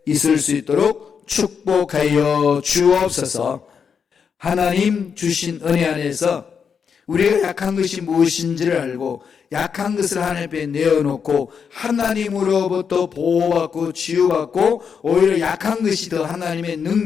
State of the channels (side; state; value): right; quieter; 6.6 dB